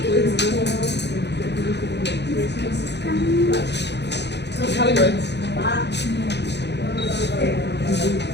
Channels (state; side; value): late; right; 0.50 ms